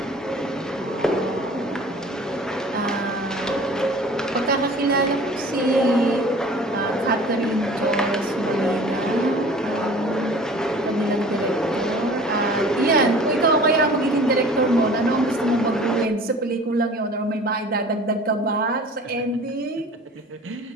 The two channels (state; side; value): normal; both; correlation 0.45